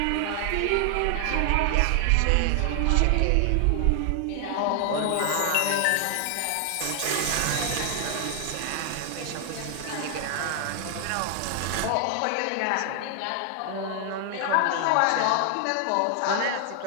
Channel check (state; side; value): different; both; correlation 0.00